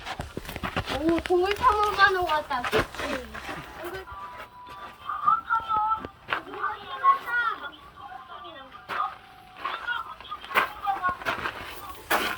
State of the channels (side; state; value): both; identical; correlation 1.00